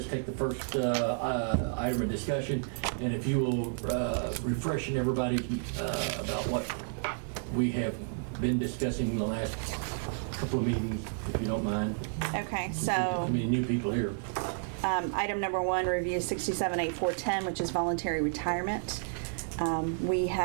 take the first item of discussion, and if you will refresh everybody about what we have been discussing in the last couple of meetings, if you don't mind. Okay, Since we've got so many new people here. Item number 1, review 678410, which is voluntary retirement. We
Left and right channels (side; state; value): left; silent; digital silence